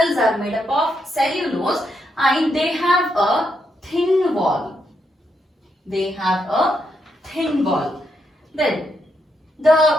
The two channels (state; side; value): normal; both; correlation 0.80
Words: are made up of cellulose and they have a thin wall. Then